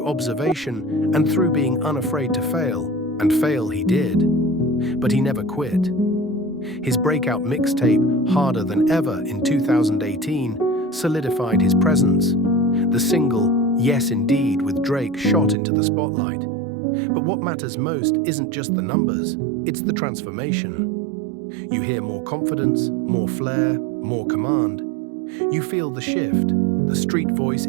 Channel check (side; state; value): left; drops out; at 15.6 s